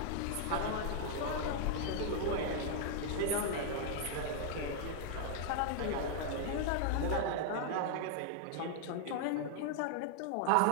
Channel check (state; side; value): different; both; correlation 0.00